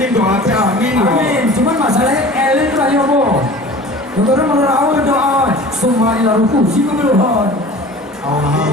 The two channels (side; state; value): both; normal; correlation 0.41